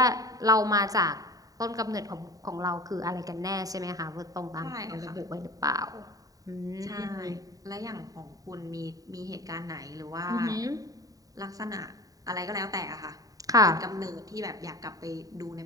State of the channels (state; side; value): late; left; 0.18 ms